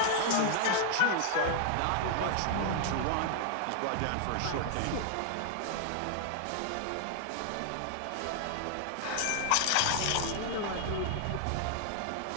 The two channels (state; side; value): different; both; correlation 0.00